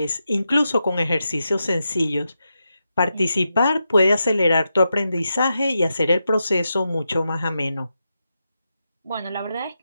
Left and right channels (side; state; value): both; inverted; correlation -0.87